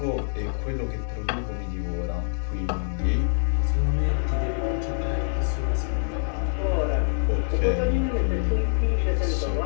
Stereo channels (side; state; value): right; silent; digital silence